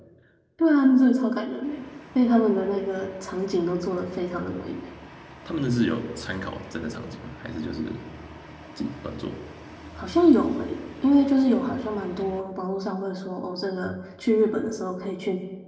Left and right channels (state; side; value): identical; both; correlation 1.00